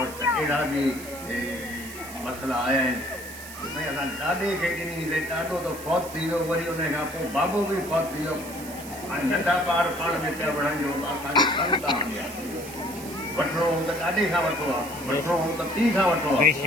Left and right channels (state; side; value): noise; right; hiss, 14 dB below the sound